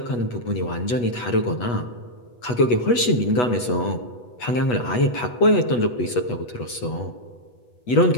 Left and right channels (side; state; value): right; late; 8.2 ms